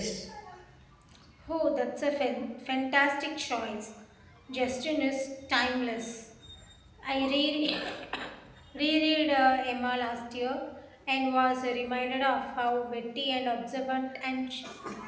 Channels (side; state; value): both; identical; correlation 1.00